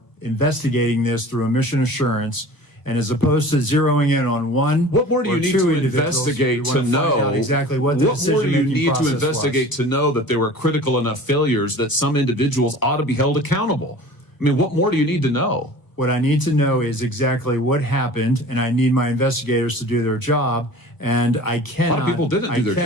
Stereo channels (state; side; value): late; right; 1.1 ms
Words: investigating this through a mission assurance. And as opposed to zeroing in on one, what more do you need to investigate to know exactly what the decision-making process was? What more do you need to investigate to know that there were critical enough failures that some individuals ought to be held accountable? I mean, what more do you need to know? What I need to know is exactly what happened, and I need my investigators to do their job. And I cannot. A lot of people didn't do their jobs. I